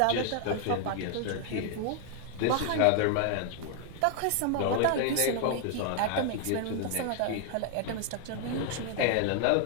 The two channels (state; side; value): different; both; correlation 0.00